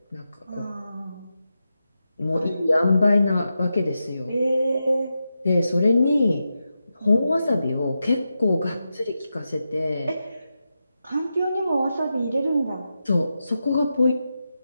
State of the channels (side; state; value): both; inverted; correlation -0.89